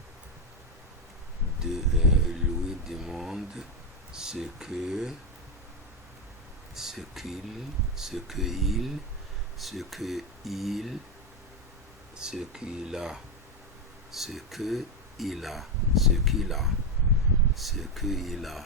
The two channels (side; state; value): both; normal; correlation 0.09